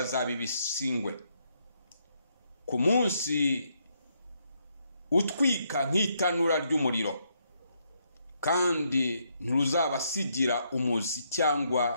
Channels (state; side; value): inverted; both; correlation -0.76